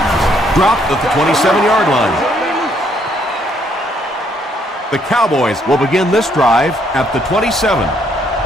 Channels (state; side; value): normal; both; correlation 0.69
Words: Dropped at the 27-yard line. The Cowboys will begin this drive at the 27.